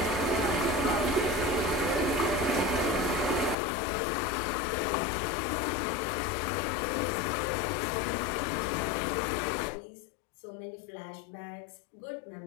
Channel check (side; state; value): right; drops out; at 3.6 s